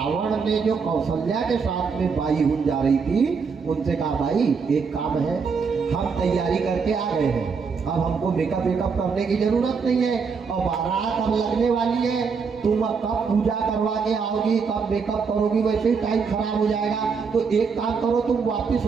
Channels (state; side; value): quieter; left; 5.5 dB